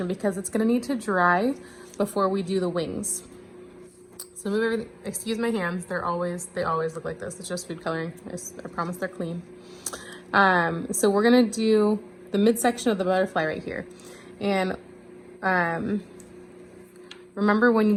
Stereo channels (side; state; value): both; identical; correlation 1.00